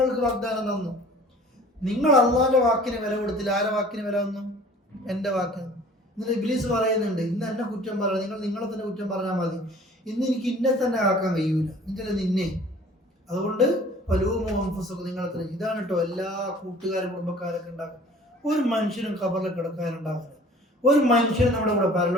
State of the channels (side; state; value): both; normal; correlation 0.49